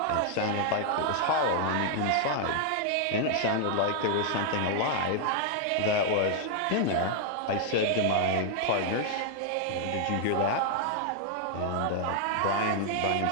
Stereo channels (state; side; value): different; both; correlation 0.00